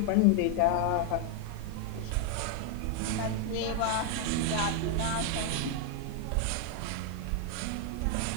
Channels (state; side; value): different; both; correlation 0.01